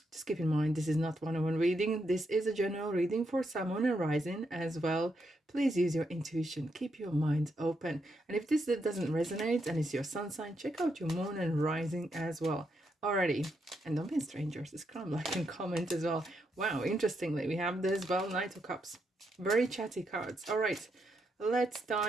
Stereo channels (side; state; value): both; normal; correlation 0.80